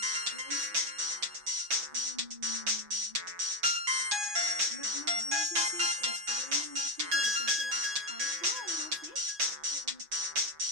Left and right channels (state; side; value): late; left; 6.0 ms